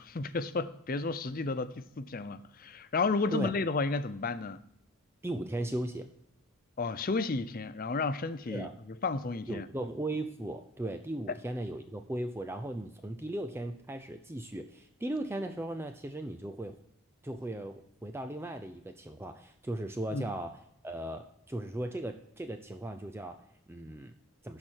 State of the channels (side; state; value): both; normal; correlation 0.46